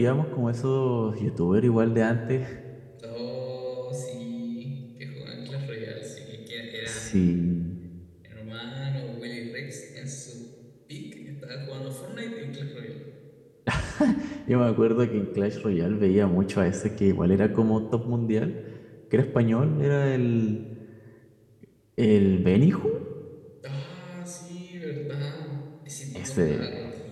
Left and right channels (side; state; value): both; identical; correlation 1.00